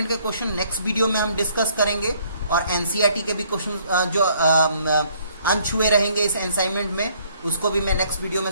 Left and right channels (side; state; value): both; inverted; correlation -0.63